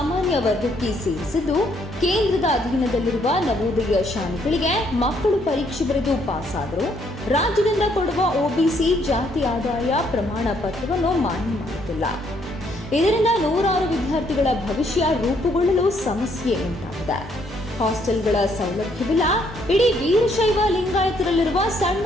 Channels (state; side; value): normal; both; correlation 0.69